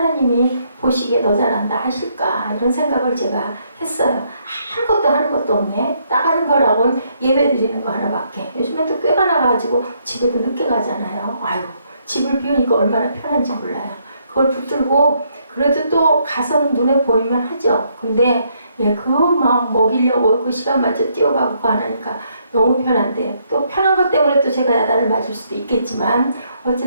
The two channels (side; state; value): both; inverted; correlation -0.72